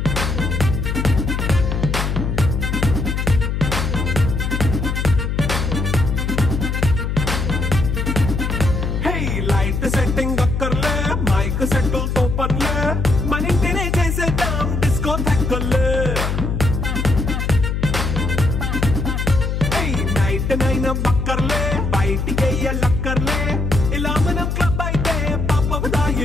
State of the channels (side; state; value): left; noise; hum, 1 dB below the sound